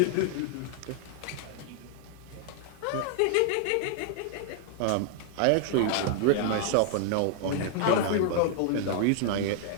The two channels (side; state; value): both; different; correlation 0.00